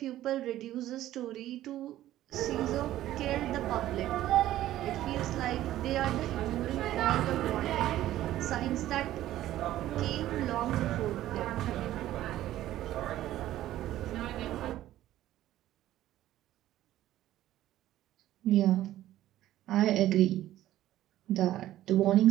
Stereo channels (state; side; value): quieter; left; 13.8 dB